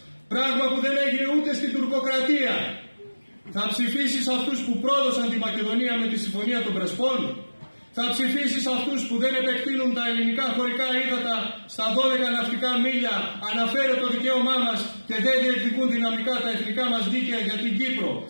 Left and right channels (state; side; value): inverted; both; correlation -1.00